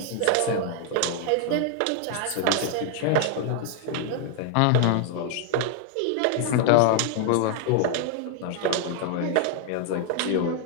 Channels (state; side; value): different; both; correlation 0.00